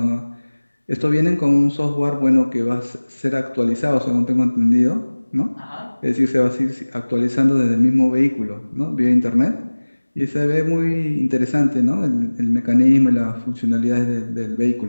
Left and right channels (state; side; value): inverted; both; correlation -1.00